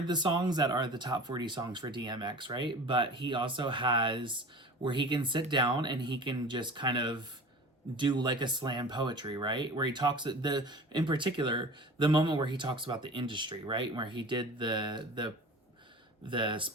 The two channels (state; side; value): normal; both; correlation 0.38